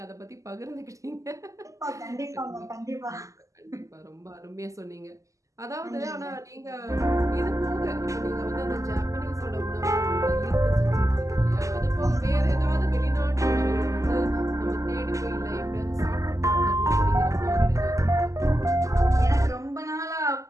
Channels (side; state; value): left; late; 0.16 ms